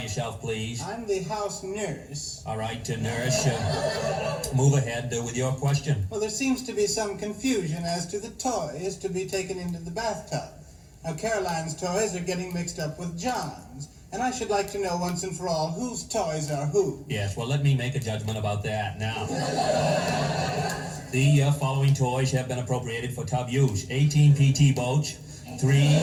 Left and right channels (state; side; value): identical; both; correlation 1.00